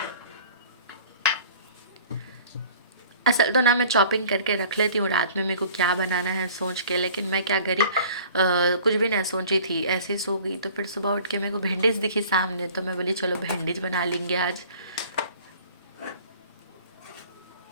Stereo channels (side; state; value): both; inverted; correlation -0.48